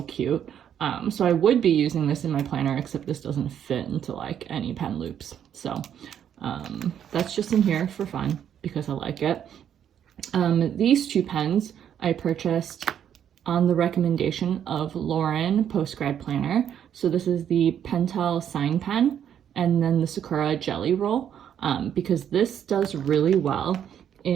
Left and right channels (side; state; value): left; quieter; 9.3 dB